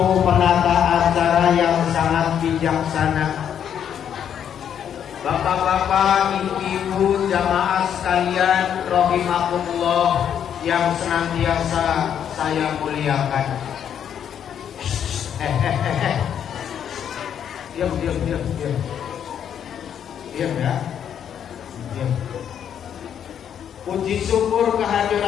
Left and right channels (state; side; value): quieter; right; 8.9 dB